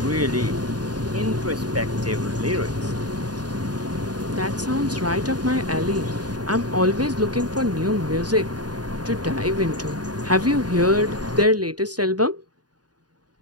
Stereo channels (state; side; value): late; left; 0.69 ms